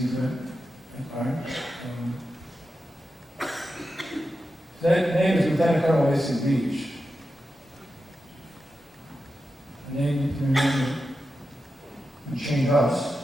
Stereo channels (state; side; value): normal; both; correlation 0.90